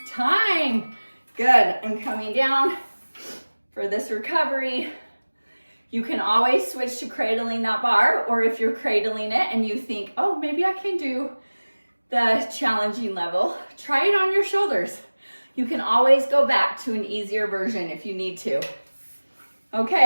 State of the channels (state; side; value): inverted; both; correlation -1.00